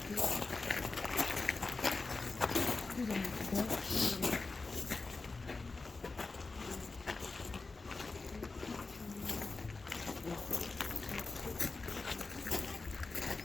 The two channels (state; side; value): quieter; right; 3.8 dB